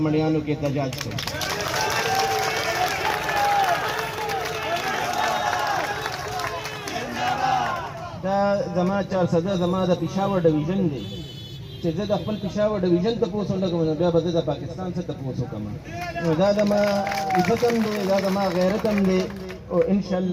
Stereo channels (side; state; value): both; identical; correlation 1.00